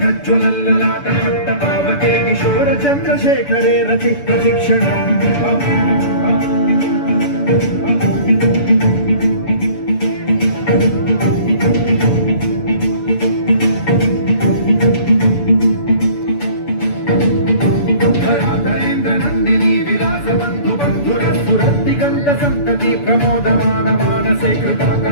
पावके किशोर चन्द्रशेखरे रचि प्रशिक्षणम् संतति प्रमोदमान मानसे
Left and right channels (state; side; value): late; right; 7.0 ms